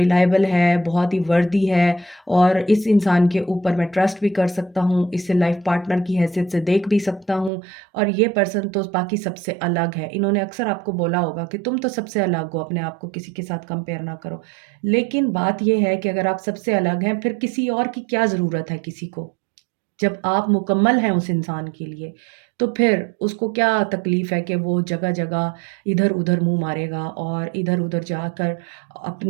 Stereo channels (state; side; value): drops out; left; at 7.5 s